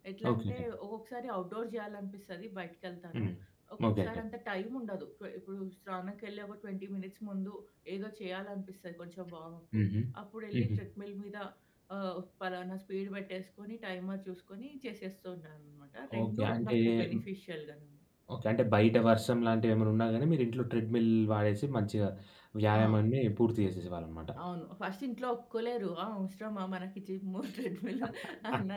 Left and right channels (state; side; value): identical; both; correlation 1.00